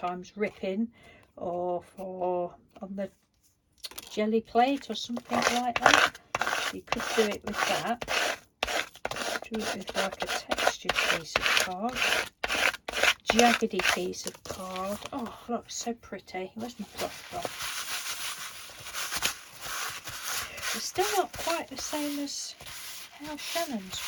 ripping, or for on the jelly plate or something like that. You could do it with that. Do it with like a textured piece of card, jaggedy piece of card. Oh look, so pretty. Where's my cloth gone? It's still not quite the same as how Shannon's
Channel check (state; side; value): identical; both; correlation 1.00